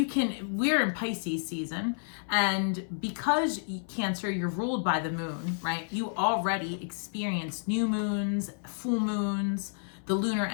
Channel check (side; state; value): right; silent; 58 dB below the other